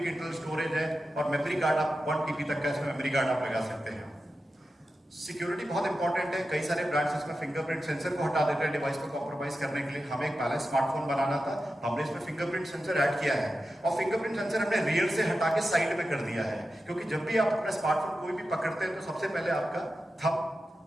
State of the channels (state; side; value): normal; both; correlation 0.92